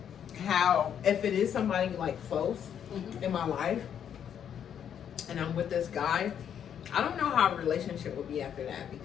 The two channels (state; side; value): quieter; right; 8.8 dB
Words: how, if it is somebody like close in my life and I'm with this guy, I don't know how a relationship would be after that,